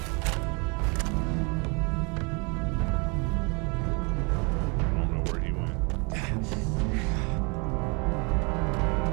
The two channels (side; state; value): left; quieter; 31.5 dB